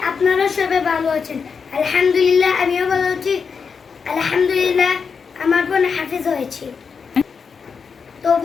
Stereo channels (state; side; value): quieter; right; 5.8 dB